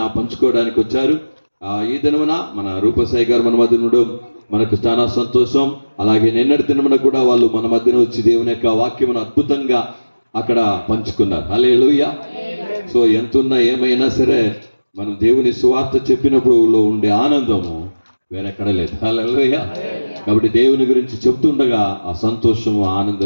పంచుకోవడానికి వచ్చారు. ఈ దినమున మన రూపసాయి గారు మన మధ్య ఉండడం మనకు చాలా సంతోషం. అలాగే నిన్నటి దినమున కూడా వాళ్ళు మన మధ్యన వచ్చి దేవుని యొక్క వాక్యమును అద్భుతంగా అక్కడ పంచుకున్నారు. హల్లెలూయా. సో ఎంతున్నా ఏమైనా సరే మనం దేవుని సువార్త చెప్పినప్పుడు ఉండే ఆనందము వేరెక్కడ లేదు. హల్లెలూయా. కాబట్టి దేవుని గురించి చెప్తుండగా ఆ సంతోషము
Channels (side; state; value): both; inverted; correlation -1.00